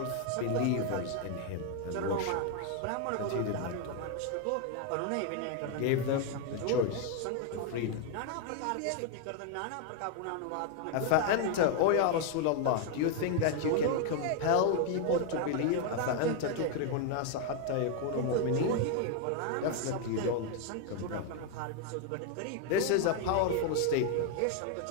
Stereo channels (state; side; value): different; both; correlation 0.00